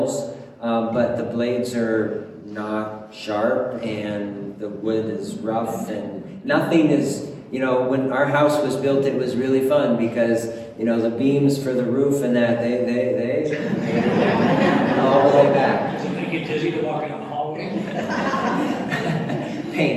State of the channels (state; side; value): identical; both; correlation 1.00